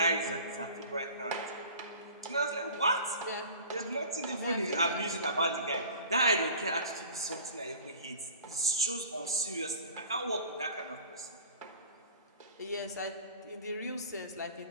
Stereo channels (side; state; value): both; inverted; correlation -0.43